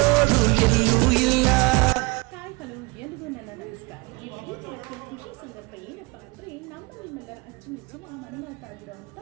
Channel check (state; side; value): quieter; left; 26.2 dB